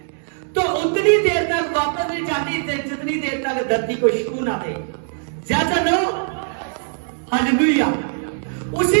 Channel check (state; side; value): silent; left; digital silence